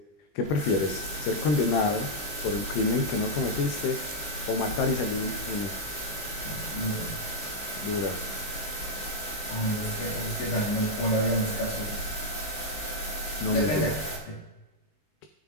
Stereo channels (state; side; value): late; right; 20 ms